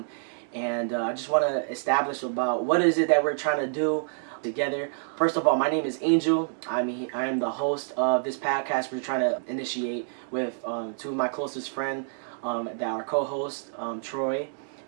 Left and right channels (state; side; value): silent; left; digital silence